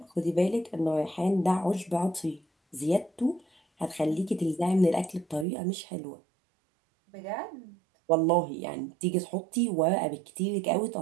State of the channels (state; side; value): drops out; left; at 5.5 s